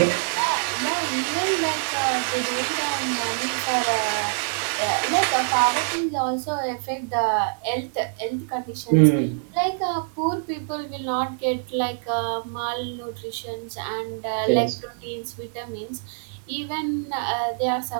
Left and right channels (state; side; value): silent; left; digital silence